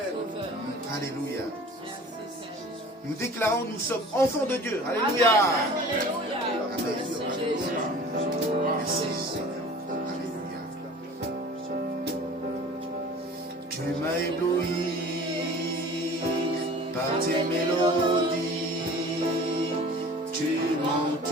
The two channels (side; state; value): both; normal; correlation 0.44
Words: Alléluia. Nous déclarons, nous sommes enfants de Dieu. Alléluia. Amen. Merci. Alléluia. Tu m'as ébloui par tes mélodies. Tu